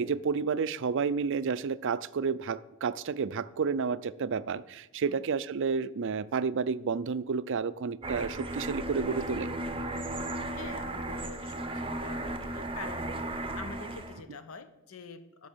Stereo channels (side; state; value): left; quieter; 4.2 dB